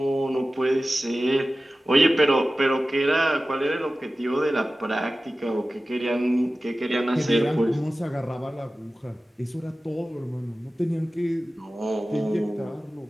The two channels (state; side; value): normal; both; correlation 0.96